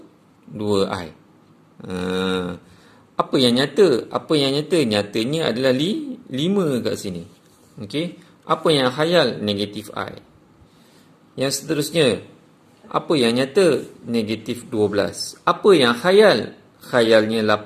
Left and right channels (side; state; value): both; identical; correlation 1.00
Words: Apa yang nyata? Apa yang nyata? Nyatanya adalah 5 kat sini. Okey. Apa yang khayal? Negatif i. Yang seterusnya. Apa yang nyata? Negatif 12. Apa yang khayal? Khayalnya